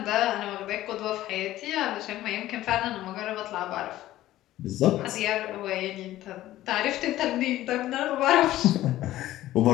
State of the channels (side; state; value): right; quieter; 14.8 dB